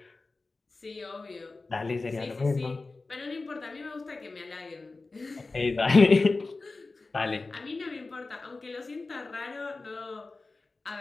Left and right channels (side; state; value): right; quieter; 3.6 dB